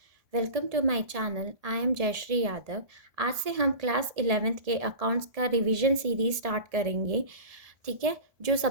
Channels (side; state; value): left; late; 1.7 ms